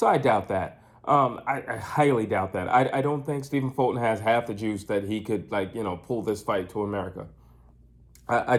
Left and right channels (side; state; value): both; identical; correlation 1.00